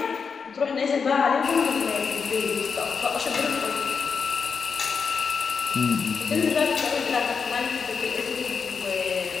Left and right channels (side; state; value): right; quieter; 5.7 dB